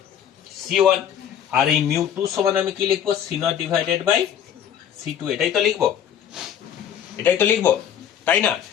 c1, আর এই μ2 সমান আমি কি লিখবো, c0 ডিভাইডেড বাই c2। এটাই তো লিখবো, তাই না?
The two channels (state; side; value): quieter; right; 9.4 dB